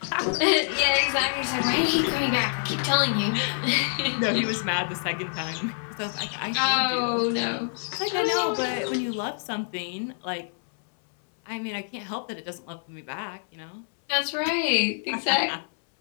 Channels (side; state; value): right; silent; 61 dB below the other